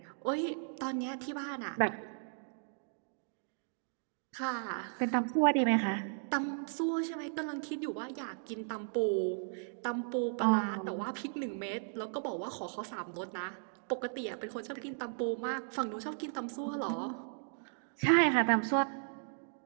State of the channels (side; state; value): left; silent; digital silence